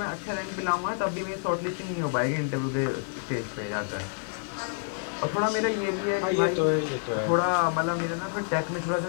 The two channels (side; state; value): right; silent; digital silence